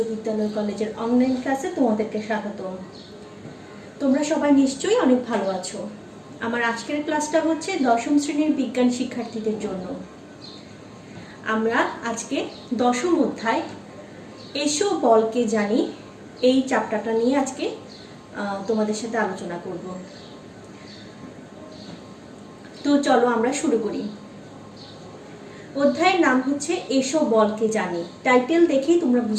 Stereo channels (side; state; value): both; identical; correlation 1.00